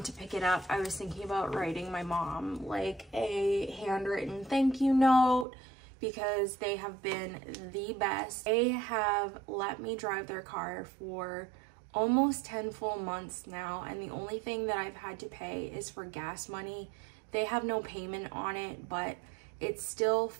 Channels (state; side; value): drops out; left; at 5.5 s